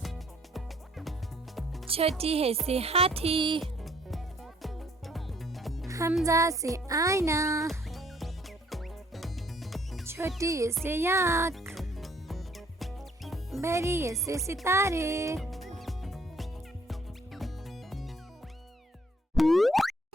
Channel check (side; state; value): both; normal; correlation 0.62